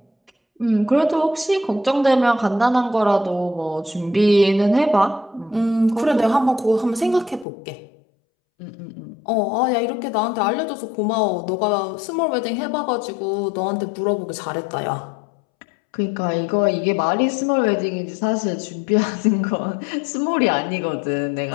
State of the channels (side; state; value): right; drops out; at 7.5 s